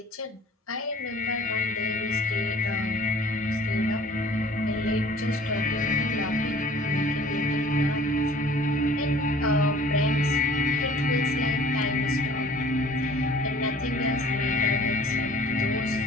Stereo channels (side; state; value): both; normal; correlation 0.49